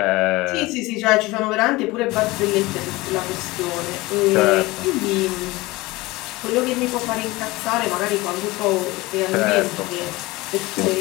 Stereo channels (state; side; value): quieter; right; 21.0 dB